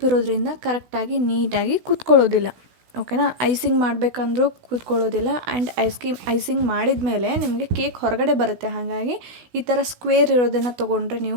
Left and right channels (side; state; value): left; late; 16 ms